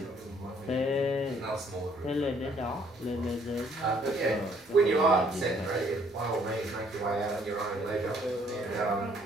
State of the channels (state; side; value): normal; both; correlation 0.63